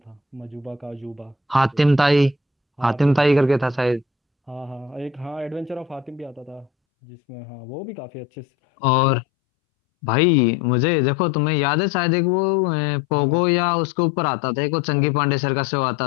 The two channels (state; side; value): drops out; right; at 6.7 s